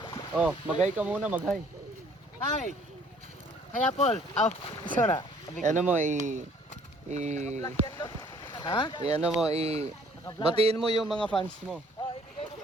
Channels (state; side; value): normal; both; correlation 0.58